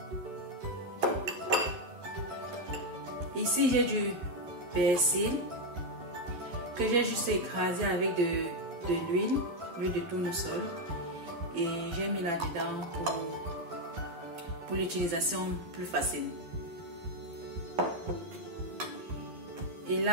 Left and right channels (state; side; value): late; left; 12 ms